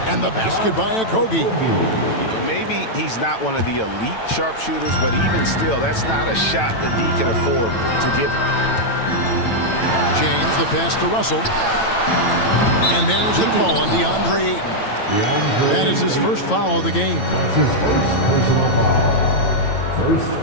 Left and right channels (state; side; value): late; right; 9.0 ms